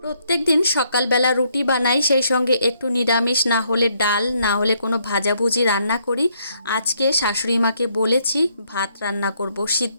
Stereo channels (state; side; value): inverted; both; correlation -0.72